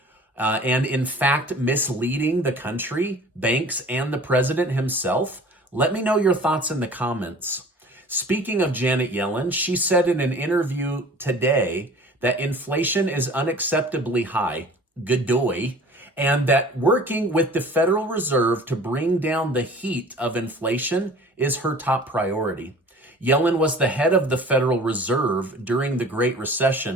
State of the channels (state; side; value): normal; both; correlation 0.45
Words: and in fact misleading the country, banks, and the president himself? Let me know your thoughts in the comments. Speaking of Janet Yellen, she said in an interview today that inflation is unacceptably high, godoy, and that working with the Federal Reserve to bring down the heat of inflation is her top priority. Yellen was the head of the Federal Reserve during the Great